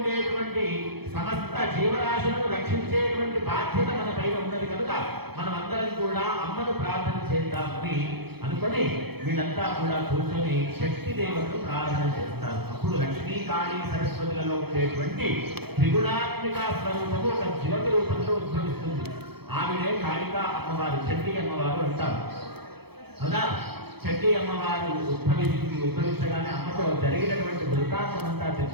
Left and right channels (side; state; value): left; late; 0.97 ms